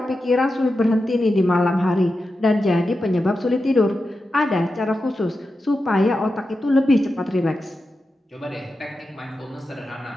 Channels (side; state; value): both; normal; correlation 0.90